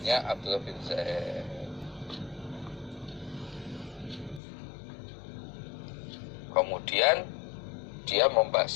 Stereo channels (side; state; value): right; drops out; at 4.4 s